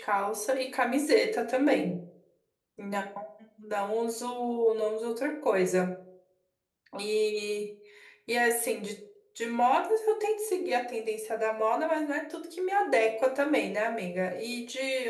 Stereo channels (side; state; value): both; identical; correlation 1.00